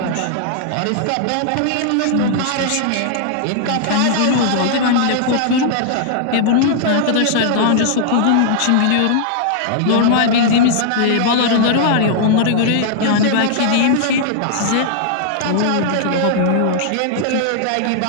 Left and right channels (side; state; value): both; different; correlation -0.01